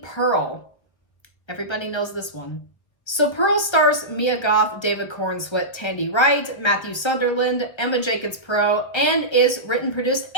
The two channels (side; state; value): right; late; 1.3 ms